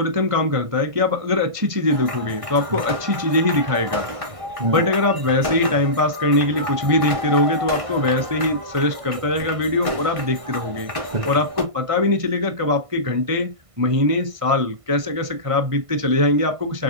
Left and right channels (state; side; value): late; left; 1.5 ms